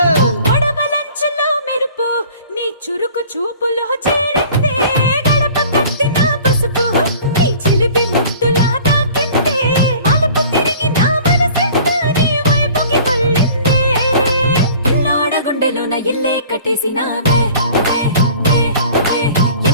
మెరుపు నీ చురుకు చూపులు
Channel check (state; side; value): inverted; both; correlation -0.47